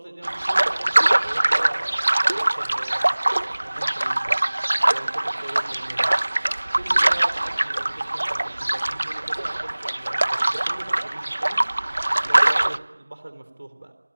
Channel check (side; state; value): both; inverted; correlation -1.00